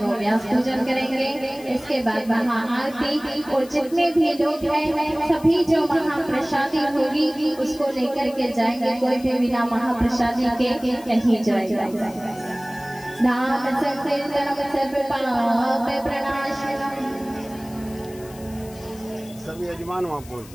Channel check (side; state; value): left; noise; hiss, 21 dB below the sound